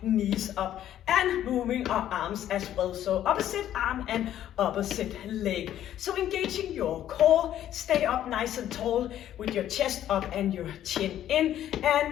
knees up and moving our arms as well. So opposite arm and opposite leg. So engaging your core, stay up nice and tall with your chest up and your chin in, and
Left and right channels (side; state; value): right; quieter; 11.6 dB